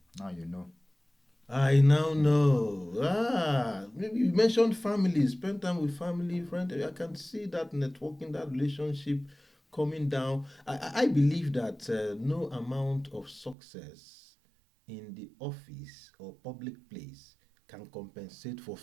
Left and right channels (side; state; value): left; drops out; at 13.6 s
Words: Now you know. I now know. Maybe you mentioned family, spend time with family, friend. I can see that networking, that relationship coming down. I believe that no amount of success in the office or public place can compensate for